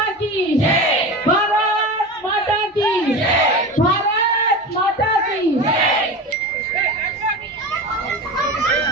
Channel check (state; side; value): normal; both; correlation 0.28